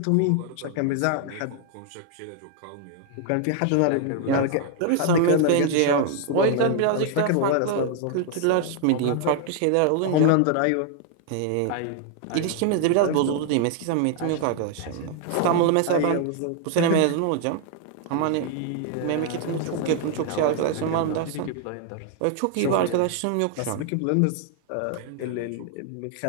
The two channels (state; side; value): different; both; correlation 0.00